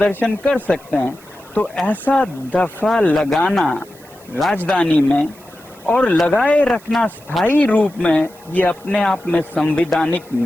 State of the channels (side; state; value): right; noise; hiss, 25 dB below the sound